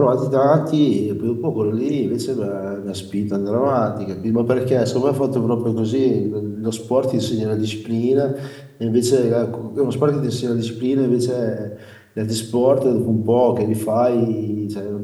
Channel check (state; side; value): identical; both; correlation 1.00